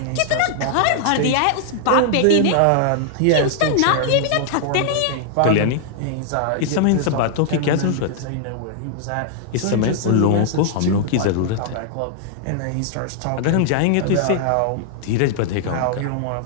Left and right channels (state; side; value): different; both; correlation -0.01